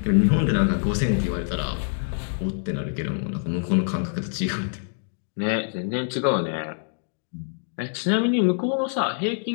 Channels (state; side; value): silent; right; digital silence